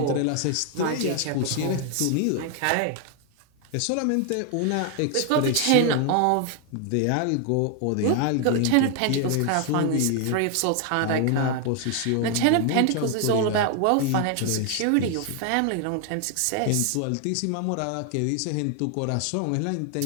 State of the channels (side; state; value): both; different; correlation 0.00